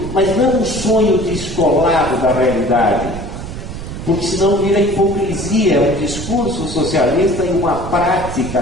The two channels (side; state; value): right; noise; rumble, 9 dB below the sound